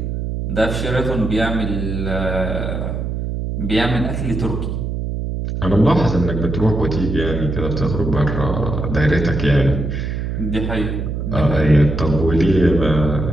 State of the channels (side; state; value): right; noise; hum, 3 dB below the sound